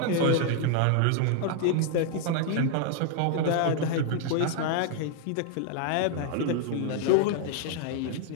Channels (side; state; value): both; different; correlation 0.00